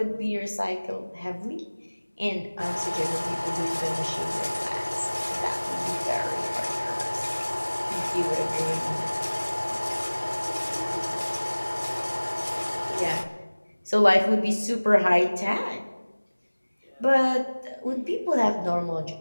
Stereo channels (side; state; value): both; inverted; correlation -1.00